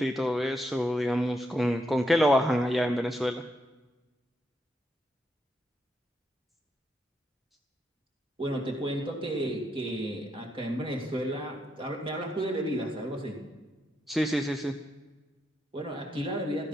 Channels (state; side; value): normal; both; correlation 0.80